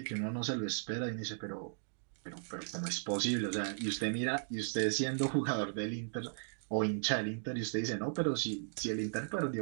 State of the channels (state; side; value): silent; left; digital silence